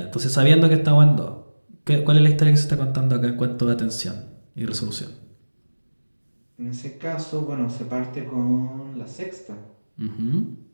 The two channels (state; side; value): inverted; both; correlation -1.00